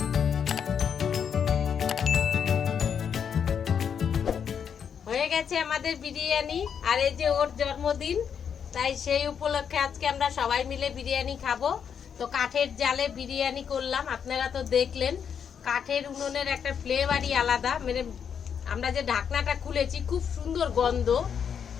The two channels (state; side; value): quieter; right; 7.5 dB